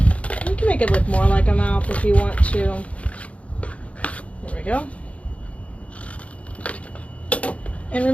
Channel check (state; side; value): late; right; 0.064 ms